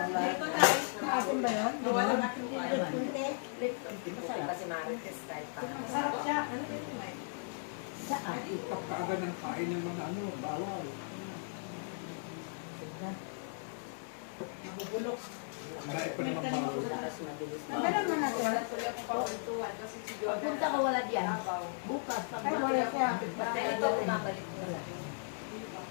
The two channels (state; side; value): silent; right; digital silence